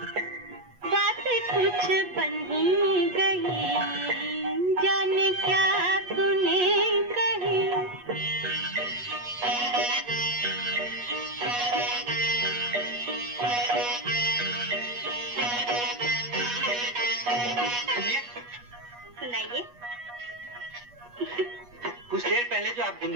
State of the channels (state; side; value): late; left; 8.3 ms